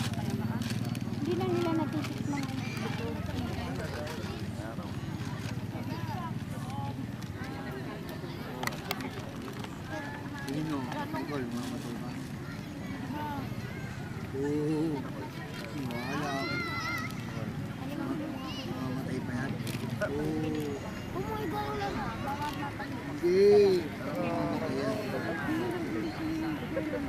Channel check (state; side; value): identical; both; correlation 1.00